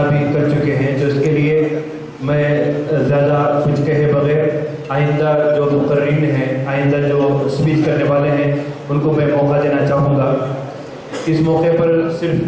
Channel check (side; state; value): both; identical; correlation 1.00